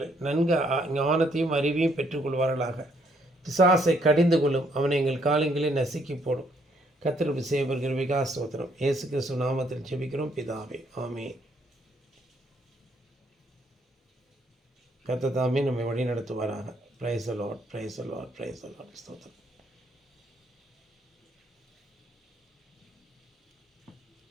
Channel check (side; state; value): both; normal; correlation 0.69